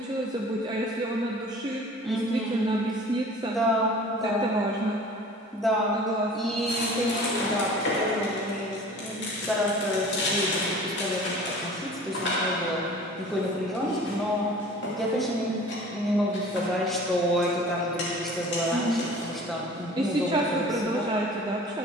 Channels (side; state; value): both; normal; correlation 0.44